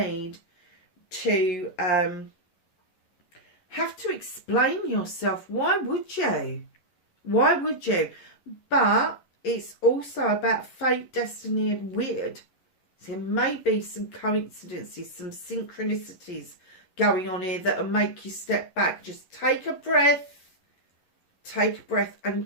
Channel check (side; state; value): right; late; 11 ms